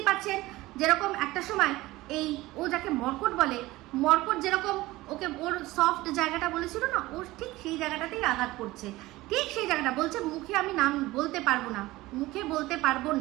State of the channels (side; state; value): left; quieter; 18.7 dB